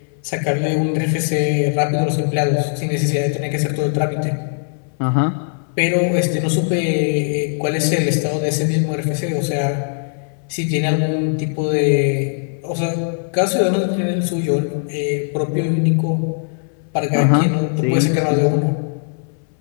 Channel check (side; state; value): right; silent; 66 dB below the other